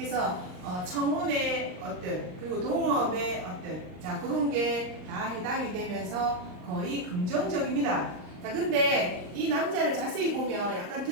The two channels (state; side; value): late; left; 39 ms